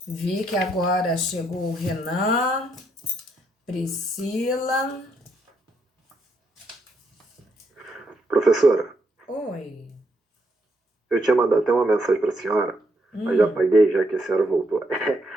Vi que agora chegou o Renan, Priscila. Professora, Oi. eu tinha mandado até uma mensagem para a senhora, mas já apaguei, já que a senhora voltou.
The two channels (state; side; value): normal; both; correlation 0.76